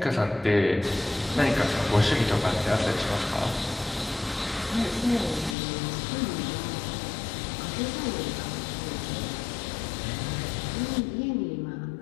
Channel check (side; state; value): right; drops out; at 5.6 s